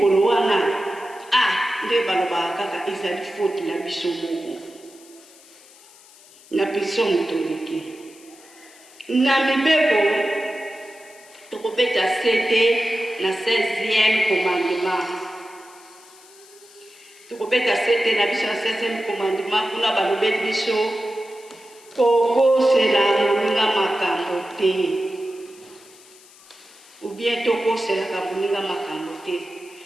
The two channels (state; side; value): noise; left; hiss, 24 dB below the sound